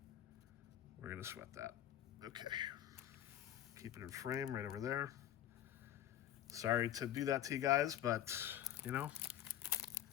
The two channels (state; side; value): quieter; right; 11.5 dB